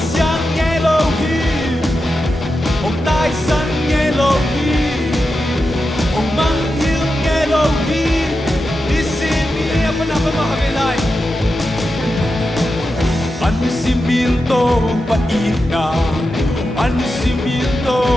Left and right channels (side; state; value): both; normal; correlation 0.90